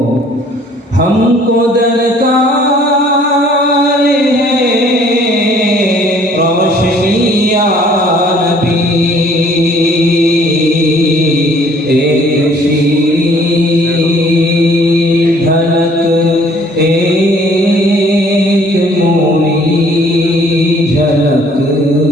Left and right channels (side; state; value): both; normal; correlation 0.58